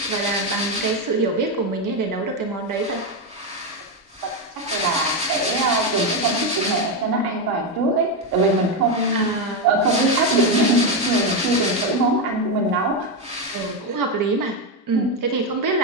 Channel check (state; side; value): normal; both; correlation 0.08